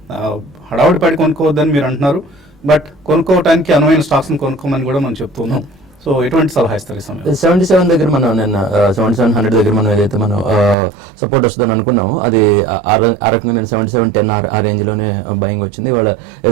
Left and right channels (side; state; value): left; drops out; at 10.8 s